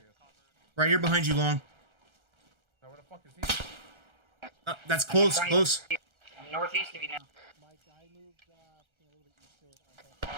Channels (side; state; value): left; late; 1.3 ms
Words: Right here behind you, Long. Now, where the fuck is he? That's close, close. I'm northeast of you now. Mike, I moved a little bit east to it.